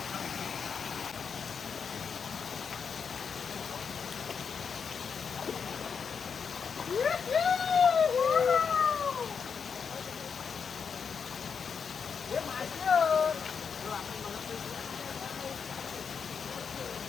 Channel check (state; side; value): quieter; right; 6.3 dB